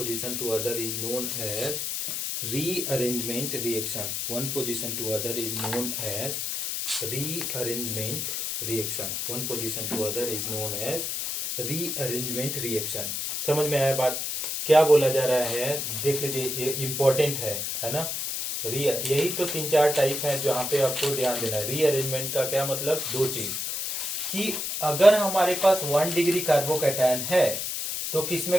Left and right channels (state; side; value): noise; left; hiss, 2 dB below the sound